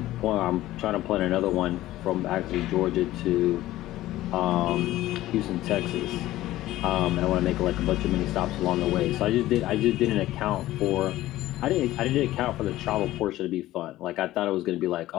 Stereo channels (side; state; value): right; quieter; 15.6 dB